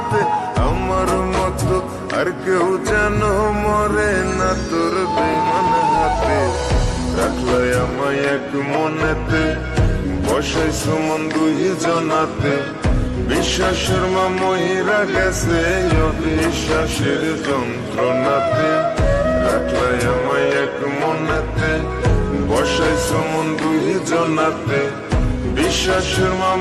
আমার মতো আর কেউ যেন মরে না তোর বেমান হাতে। রাখলাই আমায় এক মনেতে, বসাইছো মন দুই জনাতে। বিশ্বাসের মা মহিরা গেছে অবিশ্বাসের যন্ত্রণাতে। রাখলাই আমায় এক মনেতে, বসাইছো মন দুই জনাতে। বিশ্বাসের মা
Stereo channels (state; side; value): identical; both; correlation 1.00